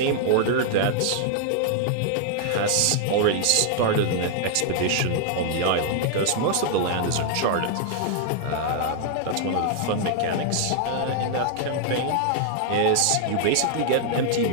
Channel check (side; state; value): both; different; correlation 0.00